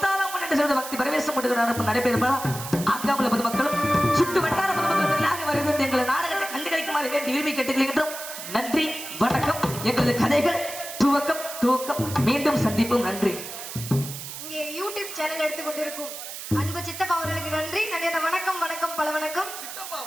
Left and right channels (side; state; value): right; noise; hiss, 9 dB below the sound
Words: என்று சொல்வது பக்தி பரவேசம் நடப்பு நடைபெறும்பா ஆக்காமல பொதுமக்களும் சுட்டு வட்டார பொதுமக்களும் வருகிறது எங்கள் நாடகத்தை கண்டுகளிக்குமாறு வேண்டி விரும்பி கேட்டுக்கொள்கின்றோம் நன்றி வணக்கம் எங்களது கதைகள் துவக்கம் துவக்கம் மீண்டும் சந்திப்போம் நன்றி இங்கே யூடியூப் சேனல் எடுத்துக்கொண்டிருக்கும் அன்பு சித்தப்பா அவர்களுக்கு நன்றி நன்றி. அந்த வணக்கம் வணக்கம் பல வணக்கம்.